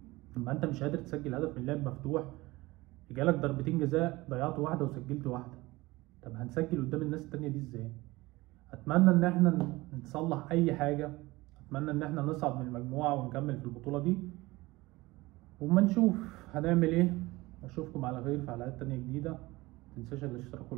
لما أنت مش قادر تسجل هدف من لعب مفتوح، جالك ضربتين جزاء ضيعت واحدة وسجلت واحدة. طب هنسجل قدام الناس التانية دي إزاي؟ أتمنى إن إحنا نصلح أي حاجة، أتمنى إن إحنا نصعد من المجموعة ونكمل في البطولة دي، وما نشوف هنعمل إيه. أشوفكم على خير في حلقات تانية جديدة. متنساش الاشتراك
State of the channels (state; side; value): quieter; left; 20.6 dB